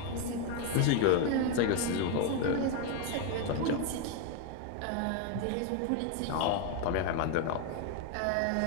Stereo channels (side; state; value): both; different; correlation 0.01